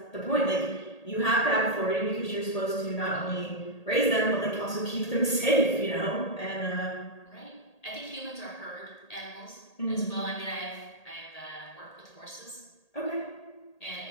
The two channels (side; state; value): right; late; 1.8 ms